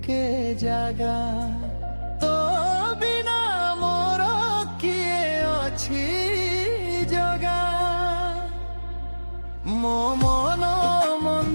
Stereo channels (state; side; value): inverted; both; correlation -1.00